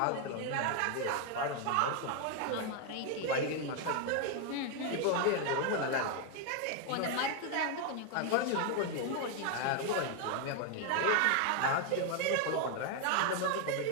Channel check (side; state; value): both; different; correlation 0.00